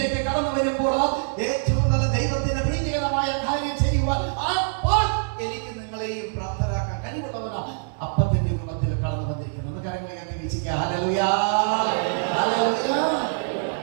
കടന്നു വരുമ്പോൾ ഏറ്റവും നല്ല ദൈവത്തിന്റെ പ്രീതികരമായ കാര്യം ചെയ്യുവാൻ അപ്പോൾ എനിക്ക് നിങ്ങളെയും പ്രാപ്തരാക്കാൻ കഴിവുള്ളവനാ അപ്പത്തിന്റെ രൂപത്തിൽ കടന്നു വന്നിരിക്കുന്നത്. കരങ്ങളെ വീക്ഷിക്കുക. ഹല്ലേലൂയ.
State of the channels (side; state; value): left; silent; digital silence